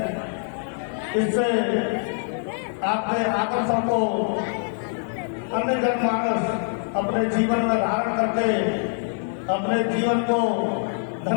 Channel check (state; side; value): silent; right; digital silence